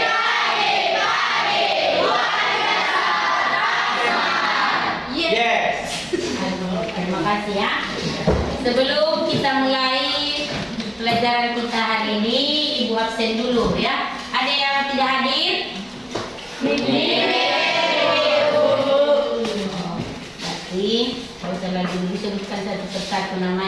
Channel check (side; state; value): both; identical; correlation 1.00